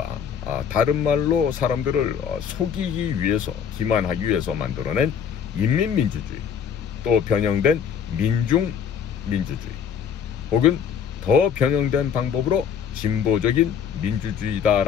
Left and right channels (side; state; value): right; quieter; 7.6 dB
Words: 다른 말로 사람들을 속이기 위해서, 기만하기 위해서 만들어낸 인민민주주의, 또 변형된 민중민주주의, 혹은 더 변형된 방법으로 진보적인